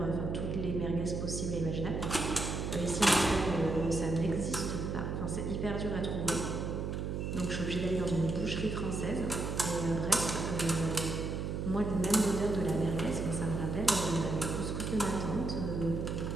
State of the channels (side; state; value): right; noise; hum, 2 dB below the sound